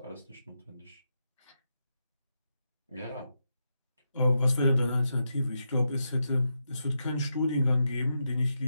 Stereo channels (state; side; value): inverted; both; correlation -0.85